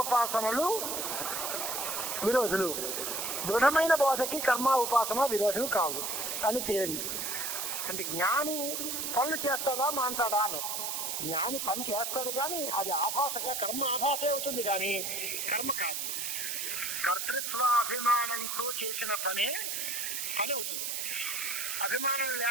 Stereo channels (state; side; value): noise; right; hiss, 2 dB below the sound